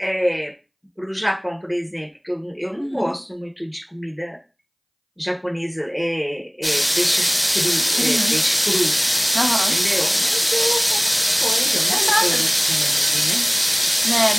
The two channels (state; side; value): identical; both; correlation 1.00